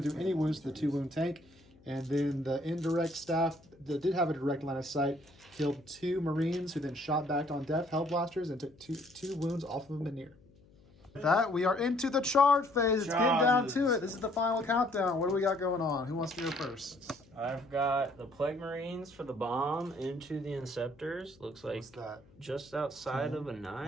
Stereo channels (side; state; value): left; noise; hum, 27 dB below the sound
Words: to do any wounds to the 2 wound tank. And then the indirect staff that did have a direct line of sight killed 2 Marines, who then shot back on Death Hell Blasters and took two wounds off of Manir. With that, we are into the charge phase. It's getting down to it. This is the final countdown. What do we got going on? Who wants to go first? I've got the Plague Marines for the bomb into the Inceptors. Looks like What's that? just outside of a